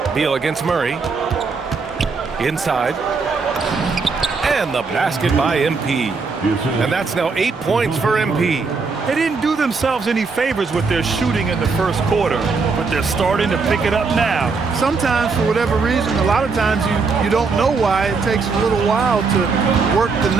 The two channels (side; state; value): left; quieter; 4.6 dB